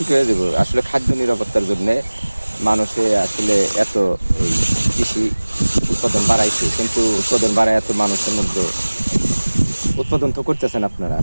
হয়ে যাবো। আসলে খাদ্য নিরাপত্তার জন্য মানুষে আসলে এত কৃষি উৎপাদন বাড়াইছে, কিন্তু উৎপাদন বাড়ায় এত মানুষের মধ্যে উৎপাদন তো করতেছেন আপনারা,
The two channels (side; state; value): both; inverted; correlation -1.00